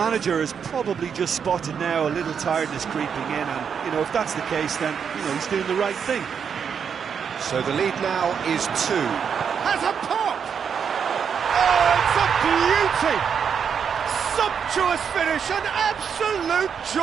has probably just spotted now a little tiredness creeping in, and, you know, if that's the case, then, you know, he's doing the right thing. So the lead now is 2. Has a pop! Oh, it's a beauty! Sumptuous finish, an absolute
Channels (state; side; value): quieter; left; 7.1 dB